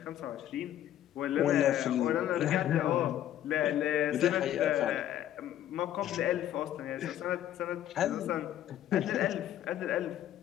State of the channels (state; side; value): quieter; right; 11.8 dB